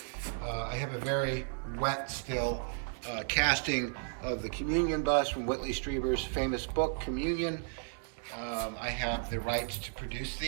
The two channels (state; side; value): silent; left; 55 dB below the other